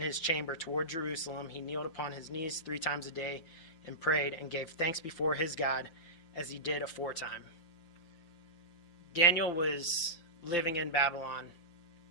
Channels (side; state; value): right; late; 5.9 ms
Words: his chamber toward Jerusalem, he kneeled upon his knees 3 times a day and prayed and gave thanks before his God as he did aforetime. Daniel was living in Babylon,